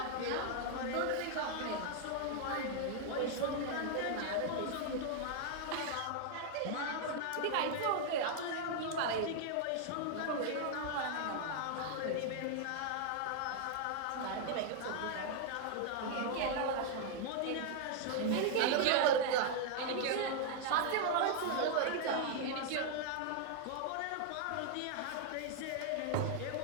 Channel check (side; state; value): both; different; correlation 0.00